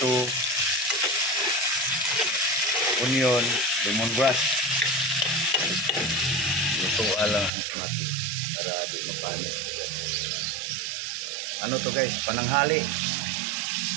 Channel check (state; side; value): drops out; left; at 7.5 s